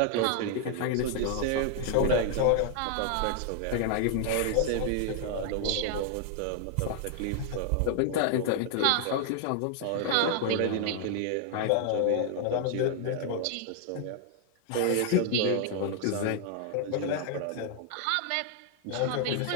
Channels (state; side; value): different; both; correlation 0.00